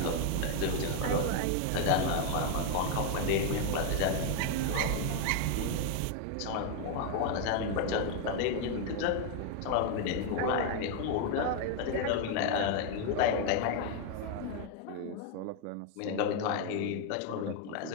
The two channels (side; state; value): both; different; correlation 0.01